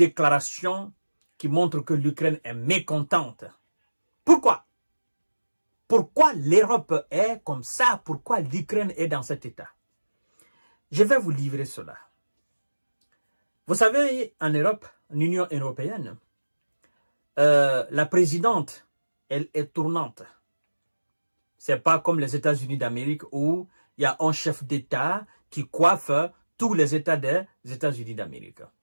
qui montre que l'Ukraine est mécontente. Pourquoi? Pourquoi l'Europe est comme ça? Pourquoi l'Ukraine est dans cet état? Je vais vous livrer cela. Vous savez, en Europe, en Union européenne, la présidente, elle est tournante. C'est pas comme les États-Unis d'Amérique où il y a un chef d'État qui coiffe tous les États des États-Unis d'Amérique.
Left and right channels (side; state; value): both; inverted; correlation -1.00